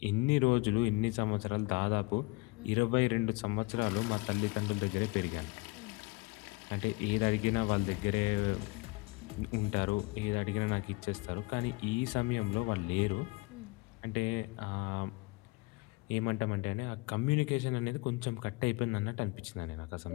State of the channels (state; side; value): quieter; right; 25.0 dB